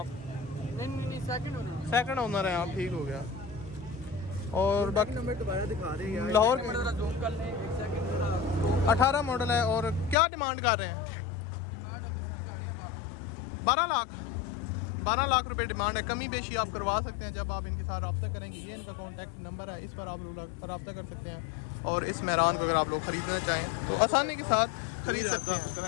नहीं सेकंड ओनर है आप, ठीक हो गया। और बाकी नंबर दोबारा दिखा रहे हैं लाहौर सेकंड जरा जूम कर लें, एक सेकंड। 18 मॉडल है। और क्या डिमांड कर रहे हैं? डिमांड अब इसकी गाड़ियां 12 लाख रुपए डिमांड है। कमी बेशी आप करवा सकते हैं जब आप इनके साथ रब्ता करेंगे। ये इनका कॉन्टैक्ट नंबर है, इस पर आप लोग रब्ता कर सकते हैं। और इस मेहरान को अगर आप लोग खरीदना चाहें तो आसानी के साथ खरीद सकते हैं।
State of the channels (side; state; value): right; drops out; at 10.2 s